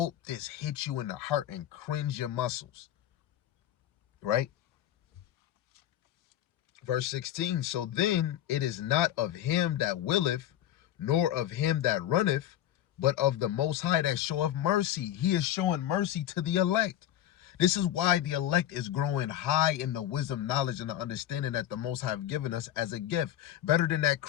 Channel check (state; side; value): quieter; right; 12.0 dB